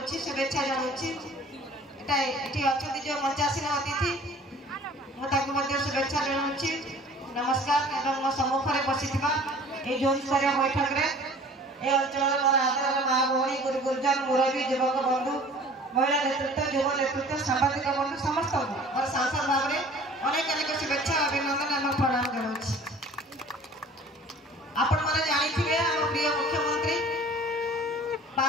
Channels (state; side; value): normal; both; correlation 0.48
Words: शुभेच्छा जनाऊँगी ये अच्छा जो मंचासीन अतिथि मुझे शुभेच्छा जनाऊँगी नमस्कार एवं मो सम्मुख में बसी जोन स्तरीय बैठक में ये अंचल मोर आदर माँ भौणी गुरु गुरुजन मुरबी युवक बंधु महिला नेतृत्व युव नेतृत्व सांबादिक बंधु समस्त और सांसद भाव में अनेक अनेक शुभेच्छा अभिनंदन एवं प्रणाम जनाऊँगी। आपण मैंने जानी आम प्रिय मुख्यमंत्री